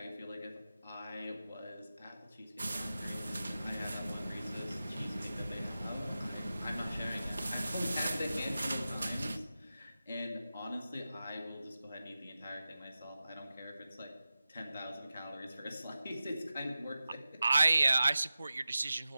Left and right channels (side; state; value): both; inverted; correlation -0.94